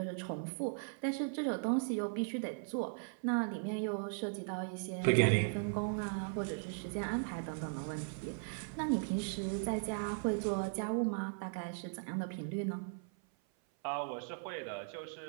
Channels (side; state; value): left; silent; 52 dB below the other